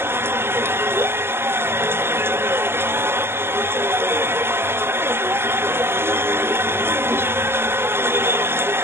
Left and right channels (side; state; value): left; late; 0.11 ms